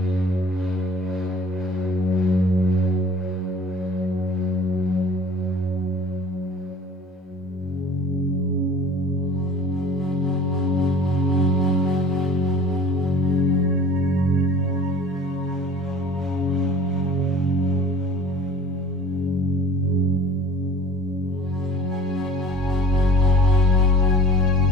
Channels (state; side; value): normal; both; correlation 0.46